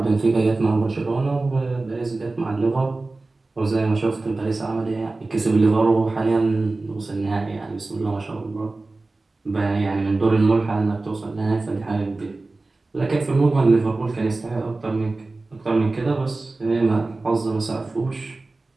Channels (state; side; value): quieter; left; 3.3 dB